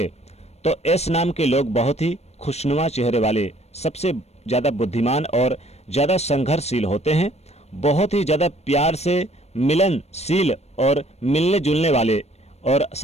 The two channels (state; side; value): late; right; 0.31 ms